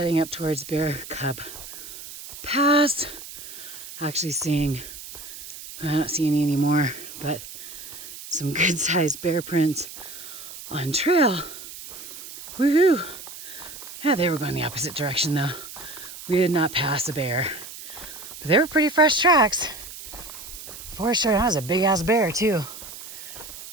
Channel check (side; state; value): right; noise; hiss, 13 dB below the sound